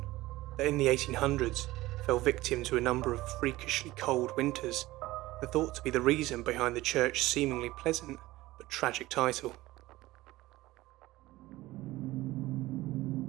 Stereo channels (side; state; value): left; quieter; 18.0 dB